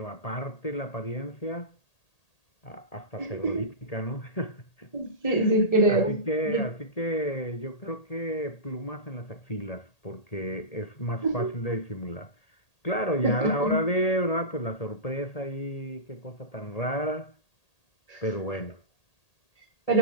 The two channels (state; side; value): late; right; 1.8 ms